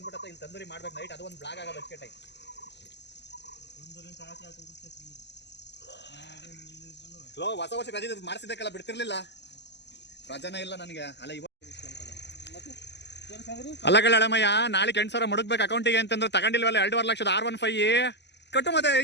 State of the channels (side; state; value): right; late; 0.50 ms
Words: ಇಲ್ಲಿ ತಂದೂರಿ ಮಾಡ್ಬೇಕು ನೈಟ್. ಅದು ಒಂದು ಬ್ಲಾಗ್ ಆಗೋದು ಅಷ್ಟೇ ಟೈಮ್. ಹೊಸ ವರ್ಷ ರಜೆ ಮಾಡಿಸಿದ್ದಕ್ಕೆಲ್ಲ ಬಿಡ್ತಿರ್ಲಿಲ್ಲ. ರಜಾನೇ ಇಲ್ಲ ನನಗೆ. ಅಲ್ಲ ಕಳ್ಳಮ್ಮಯ್ಯ, ನಾಳೆ 8,000 ಮುಡುಕ್ಬೇಕು ಅಕೌಂಟಿಗೆ ಅಂತಂದ್ರೆ ತಗೊಂಡಿಲ್ವಲ್ಲ 2.5 ಲಕ್ಷದ R15 ಕಟ್ಟು. ಮತ್ತೆ